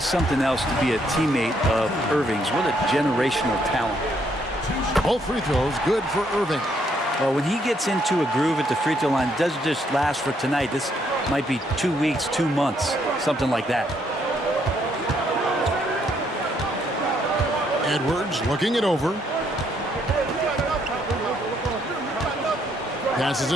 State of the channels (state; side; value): normal; both; correlation 0.72